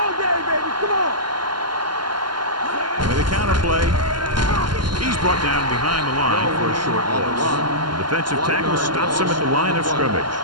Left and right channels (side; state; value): left; late; 0.71 ms